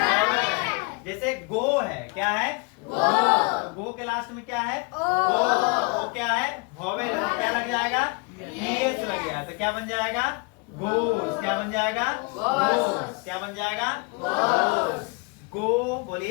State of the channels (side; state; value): right; quieter; 31.1 dB